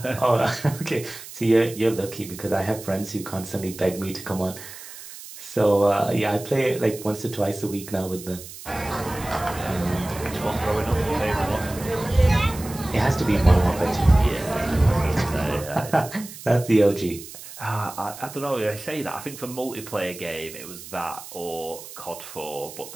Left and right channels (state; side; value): noise; right; hiss, 14 dB below the sound